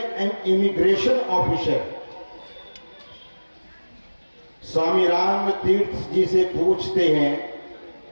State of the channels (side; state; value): both; inverted; correlation -1.00